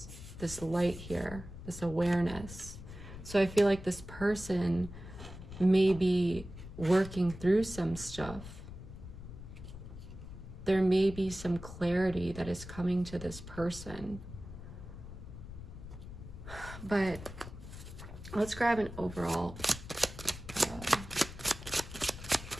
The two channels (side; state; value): left; noise; rumble, 12 dB below the sound